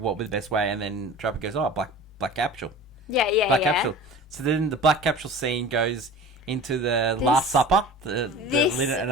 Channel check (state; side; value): normal; both; correlation 0.39